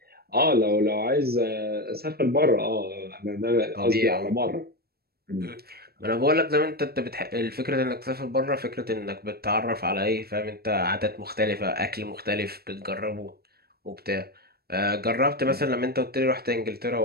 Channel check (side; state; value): left; late; 0.45 ms